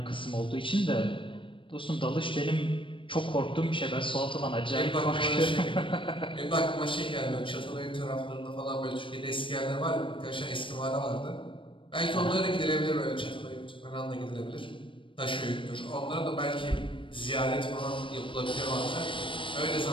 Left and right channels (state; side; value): late; right; 0.25 ms